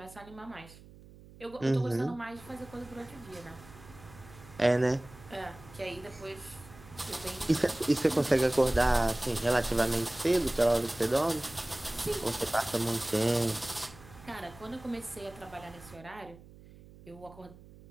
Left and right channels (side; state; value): right; noise; hum, 20 dB below the sound